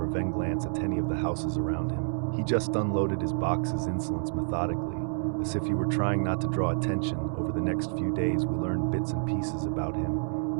even glance at any of the houses around him. He just unloaded his box's insolence methodically, as if he were trying not to draw attention. Over the next few days, we learned bits and pieces about him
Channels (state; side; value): silent; left; 59 dB below the other